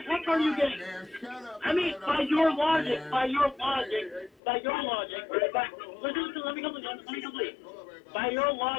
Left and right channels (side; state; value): right; drops out; at 4.4 s